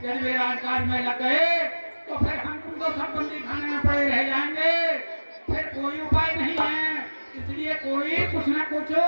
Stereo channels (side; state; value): both; inverted; correlation -1.00